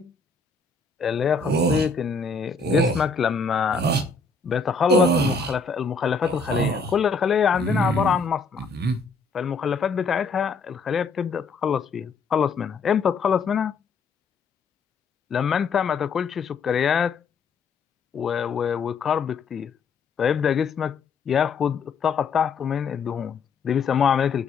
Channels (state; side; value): quieter; right; 4.5 dB